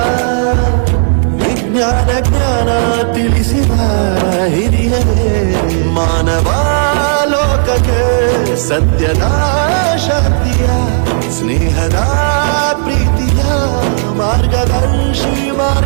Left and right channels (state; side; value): silent; left; digital silence